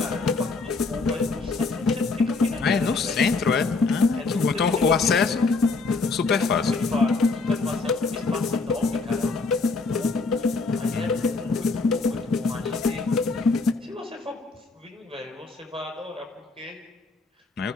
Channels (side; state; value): right; quieter; 3.9 dB